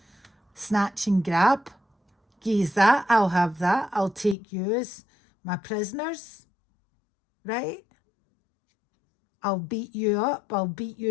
snatch and grab. Geez, that, I'll have that. I'll take you as my prisoners, right? I'll beat you up. I'll beat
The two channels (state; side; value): drops out; right; at 4.4 s